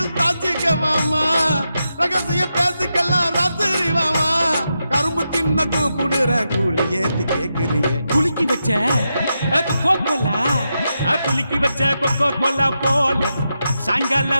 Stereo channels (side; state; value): both; inverted; correlation -0.87